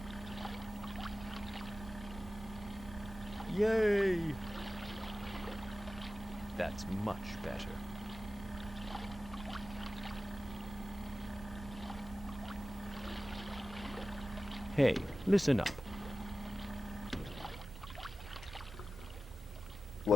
Yay! That's much better. Hey, listen up.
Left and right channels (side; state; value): both; normal; correlation 0.94